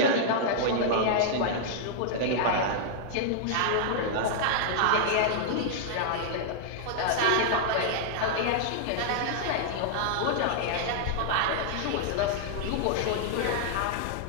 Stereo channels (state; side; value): different; both; correlation -0.01